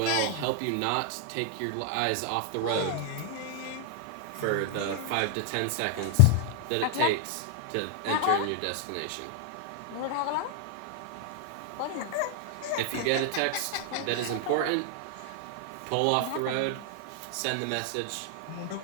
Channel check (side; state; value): both; different; correlation 0.00